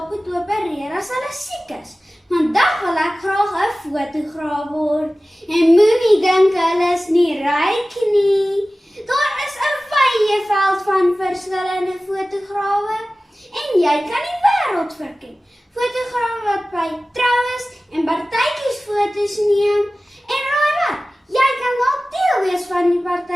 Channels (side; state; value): both; normal; correlation 0.97